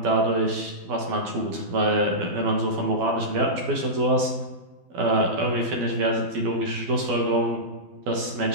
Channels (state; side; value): late; left; 12 ms